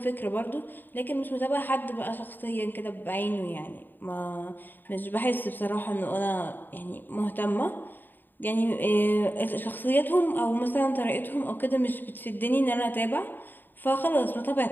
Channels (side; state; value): right; late; 0.091 ms